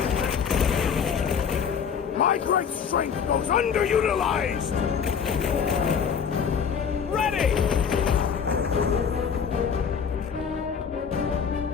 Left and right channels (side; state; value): right; quieter; 6.9 dB